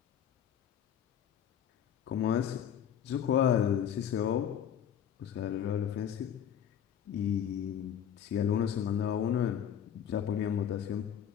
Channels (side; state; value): right; quieter; 9.1 dB